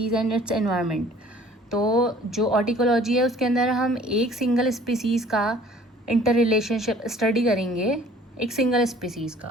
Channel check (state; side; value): normal; both; correlation 0.53